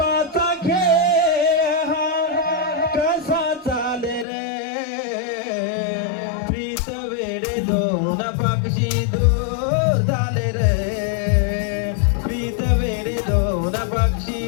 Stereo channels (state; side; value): drops out; right; at 4.2 s